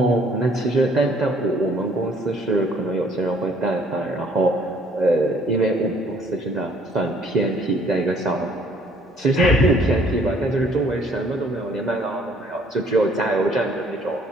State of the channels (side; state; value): both; normal; correlation 0.60